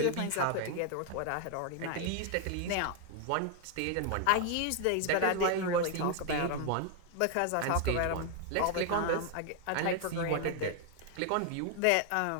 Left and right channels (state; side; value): different; both; correlation 0.00